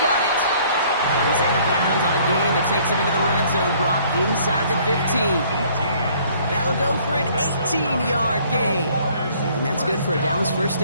it. He's out of bounds on a gain that takes him into the red zone, Brock, inside the 15. That'll go for an 18-yard gain. And that's good for a Dallas first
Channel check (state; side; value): inverted; both; correlation -0.58